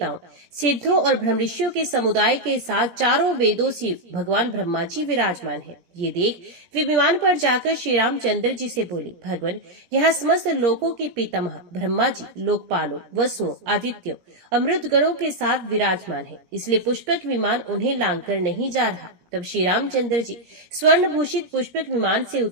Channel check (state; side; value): late; left; 17 ms